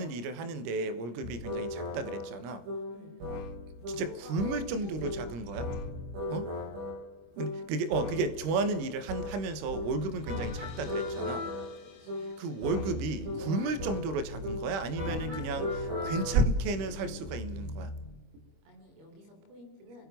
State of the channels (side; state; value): left; late; 26 ms